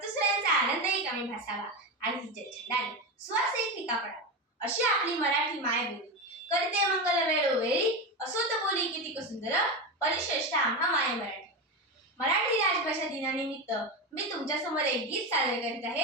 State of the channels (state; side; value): normal; both; correlation 0.17